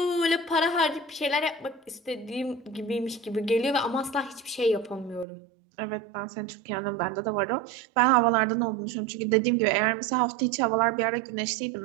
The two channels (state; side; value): drops out; left; at 5.2 s